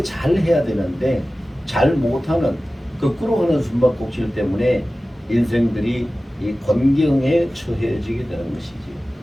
잘 해야 되는데 잘 못하는 거꾸로 하는 숨바꼭질 때문에 인생들이 이 곤경에 처해지게 되는 것이지.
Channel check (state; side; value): normal; both; correlation 0.96